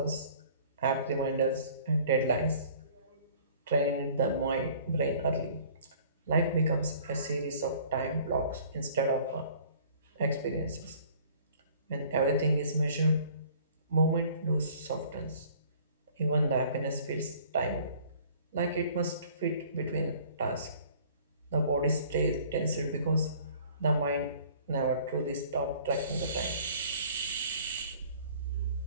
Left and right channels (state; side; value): inverted; both; correlation -0.52